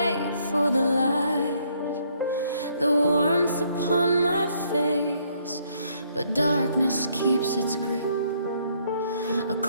for the light, the warmth upon my face, but darkness keeps its grip, a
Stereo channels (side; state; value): both; inverted; correlation -0.68